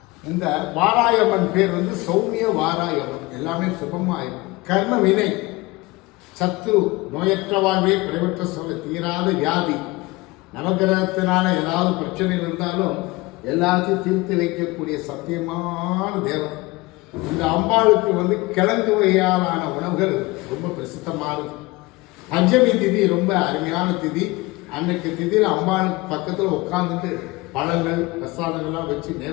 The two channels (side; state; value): right; quieter; 22.4 dB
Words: இந்த வாராயம்மன் பேர் வந்து சௌமிய வாராயம்மன். எல்லாமே சுபமாக இருக்கும். கர்ம வினை, சத்ரு, நோயற்ற வாழ்வே, குறைவற்ற சொல்ல, தீராத வியாதி, நவகிரகத்தினால ஏதாவது பிரச்சனைகள் இருந்தாலும் எல்லாத்தையும் தீர்த்து வைக்கக்கூடிய சத்தியமான தேவன். இந்த அம்பாளுக்கு வந்து கிழங்கு வகையாலான உணவுகள் ரொம்ப பிரசித்தமானது. பஞ்சமி திதி ரொம்ப அருமையான திதி. அன்னைக்கு திதியில் அம்பாளுக்கு பக்கத்தில் உட்காந்துட்டு பழங்கள் பிரசாதங்கள்லாம் வச்சு